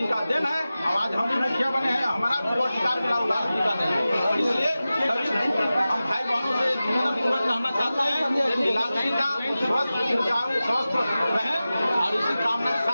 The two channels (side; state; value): both; inverted; correlation -0.95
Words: का दिन है। आवाज हम भी मुखिया बने हैं, हमारा भी अधिकार मिला लालू जी का दिन है। इसलिए सभी हम भाई बहनों से निवेदन पूर्वक कहना चाहते हैं कि लालू जी का स्वस्थ रहे और इसी कामना के